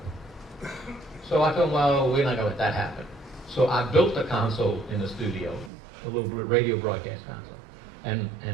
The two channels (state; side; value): drops out; left; at 5.7 s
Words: So I thought, well, we're not going to let that happen. So I built a console in the studio, a little radio broadcast console. And